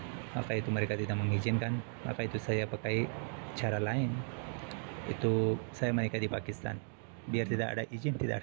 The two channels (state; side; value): silent; left; 54 dB below the other